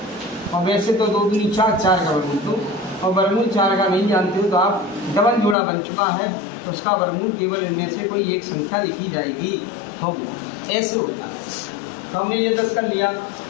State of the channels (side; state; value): right; drops out; at 5.6 s